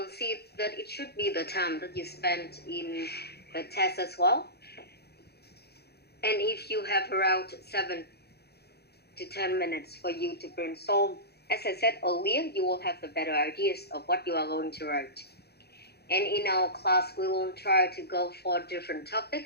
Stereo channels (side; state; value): right; late; 0.47 ms